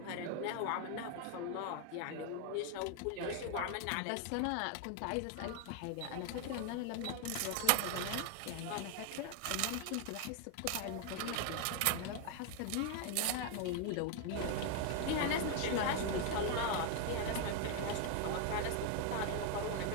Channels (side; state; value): both; different; correlation 0.01